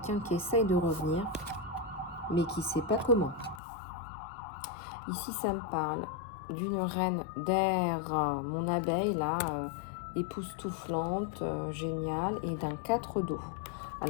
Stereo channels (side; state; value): right; drops out; at 3.6 s